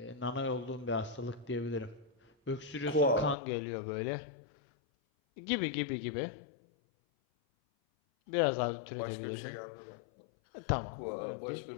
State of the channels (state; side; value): drops out; right; at 3.4 s